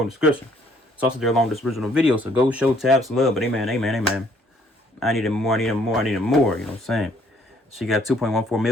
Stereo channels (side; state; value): both; normal; correlation 0.63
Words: in the description. It's also there along with this original video, so go show Tabs love. But amen. I need him more, you know what I'm saying? She got 2.14